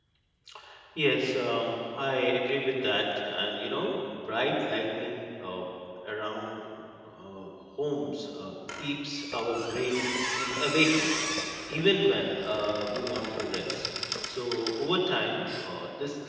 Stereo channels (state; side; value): identical; both; correlation 1.00